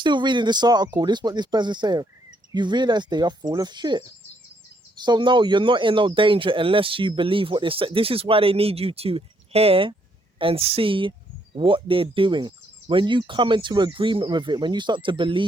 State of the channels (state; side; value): normal; both; correlation 0.72